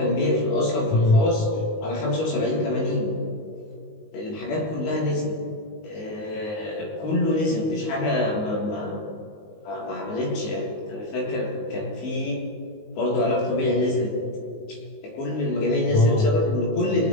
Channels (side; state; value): right; late; 19 ms